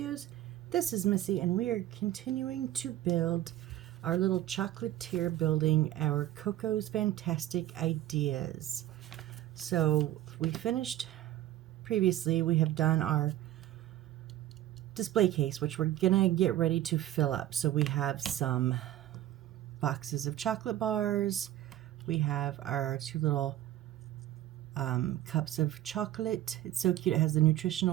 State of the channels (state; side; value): quieter; left; 13.6 dB